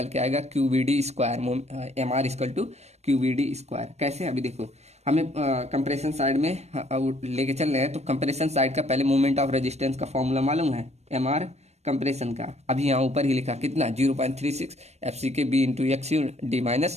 के आएगा Q V D square, M R equal to Q V D square. कैसे, अभी देखो हमें कंप्रेशन साइड में लेके चल रहे हैं, तो कंप्रेशन साइड का पहले मोमेंट ऑफ रेजिस्टेंस का फॉर्मूला मालूम है, एम आर कंप्रेशन का। अभी यहाँ ऊपर ही लिखा कितना 0.36 F C K B into X U D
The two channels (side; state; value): left; late; 0.31 ms